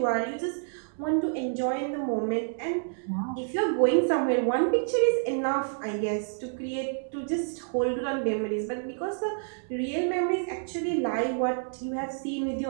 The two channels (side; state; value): left; silent; digital silence